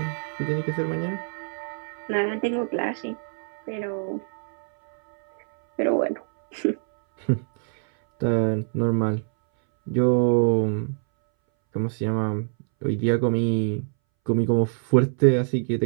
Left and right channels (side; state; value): left; silent; 62 dB below the other